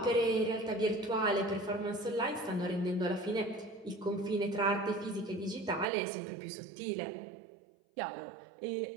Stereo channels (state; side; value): drops out; left; at 5.9 s